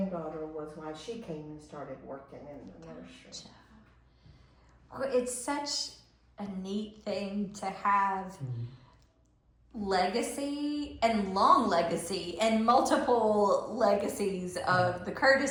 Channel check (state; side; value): identical; both; correlation 1.00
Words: was why she came and started working in the nursery. Gotcha. Well, it's such a neat thing to have legacy and long legacy and multiple legacies of the